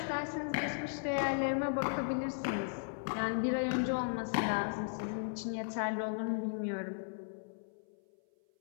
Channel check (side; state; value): right; silent; 54 dB below the other